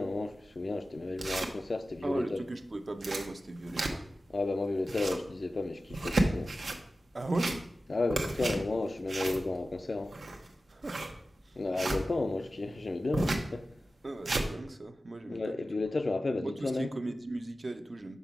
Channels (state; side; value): normal; both; correlation 0.94